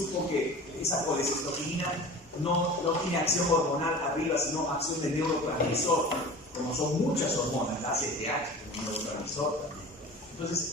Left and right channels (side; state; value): both; normal; correlation 0.38